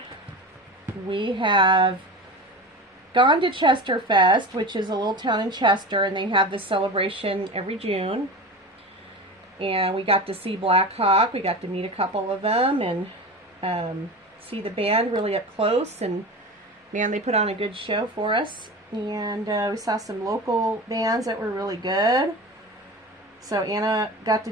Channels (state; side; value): normal; both; correlation 0.29